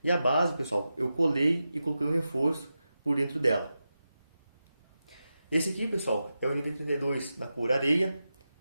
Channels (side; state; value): both; inverted; correlation -0.91